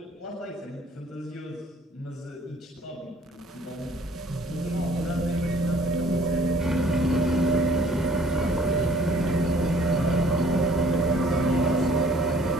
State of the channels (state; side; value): normal; both; correlation 0.56